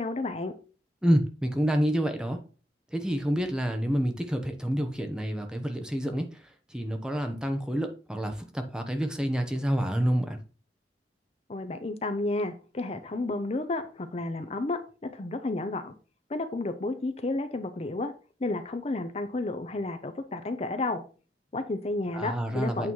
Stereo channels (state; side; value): normal; both; correlation 0.79